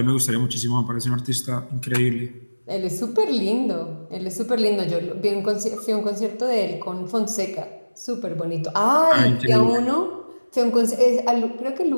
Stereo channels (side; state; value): both; inverted; correlation -1.00